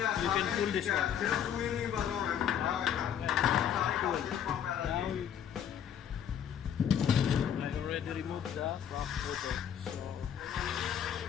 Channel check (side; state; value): right; quieter; 9.1 dB